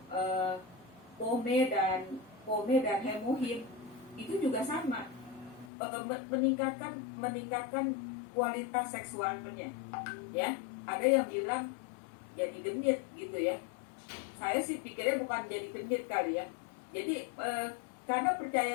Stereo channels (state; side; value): drops out; right; at 5.7 s